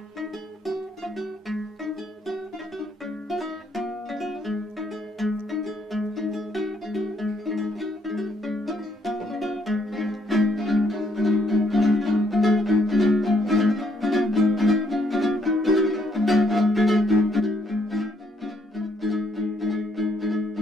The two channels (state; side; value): normal; both; correlation 0.70